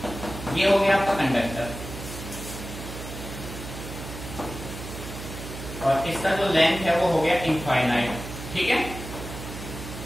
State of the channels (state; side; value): noise; right; hum, 10 dB below the sound